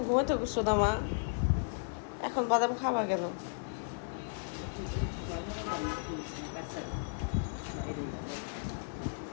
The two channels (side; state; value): right; silent; digital silence